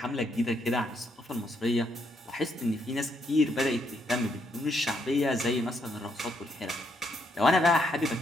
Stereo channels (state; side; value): normal; both; correlation 0.75